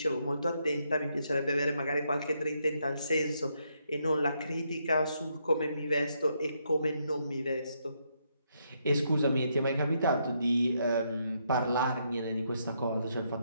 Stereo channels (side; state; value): both; inverted; correlation -0.77